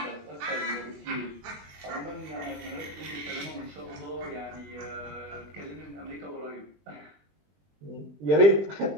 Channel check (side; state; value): left; late; 21 ms